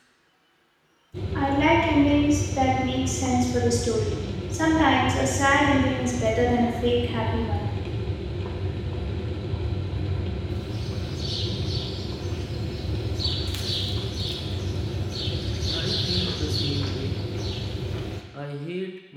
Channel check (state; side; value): identical; both; correlation 1.00